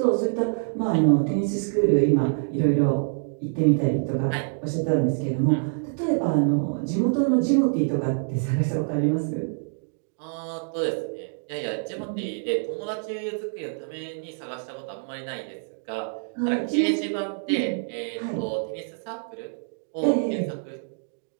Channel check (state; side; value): silent; left; digital silence